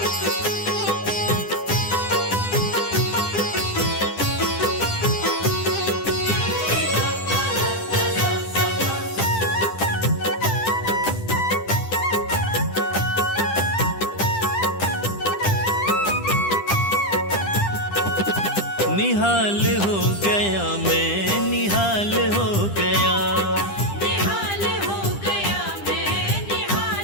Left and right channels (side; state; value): right; late; 10 ms